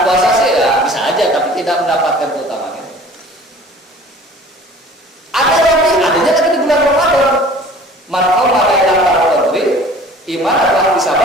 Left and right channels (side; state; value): both; normal; correlation 0.47